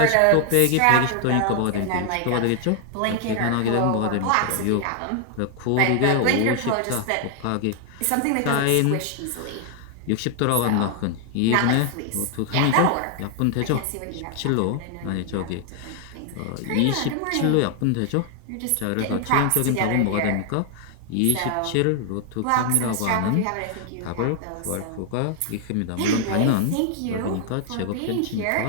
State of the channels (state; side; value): different; both; correlation 0.00